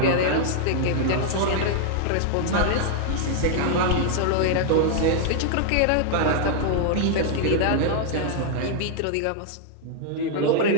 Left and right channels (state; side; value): different; both; correlation 0.00